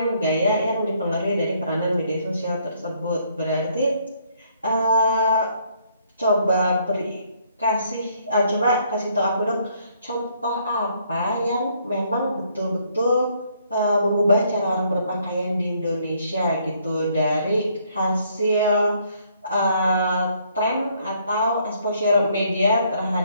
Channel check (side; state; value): both; inverted; correlation -0.67